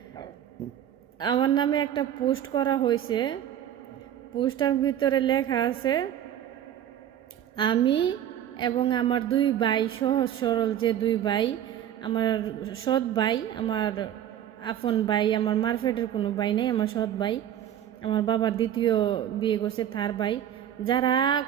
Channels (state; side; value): quieter; left; 10.6 dB